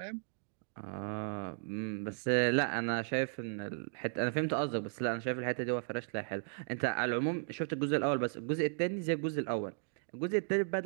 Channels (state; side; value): silent; left; digital silence